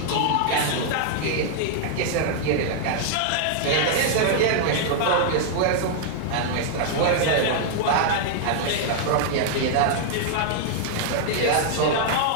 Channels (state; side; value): different; both; correlation -0.01